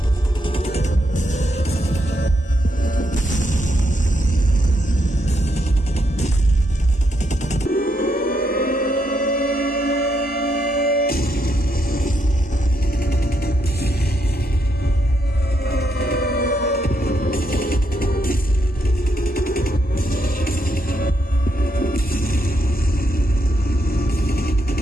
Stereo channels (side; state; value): both; normal; correlation 0.78